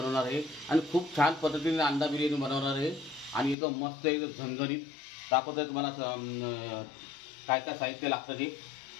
आहे आणि खूप छान पद्धतीने अंडा बिर्याणी बनवणार आहे आणि एकदम मस्त एकदम झणझणीत दाखवतोय तुम्हाला काय काय साहित्य लागतं ते।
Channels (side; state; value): right; drops out; at 3.6 s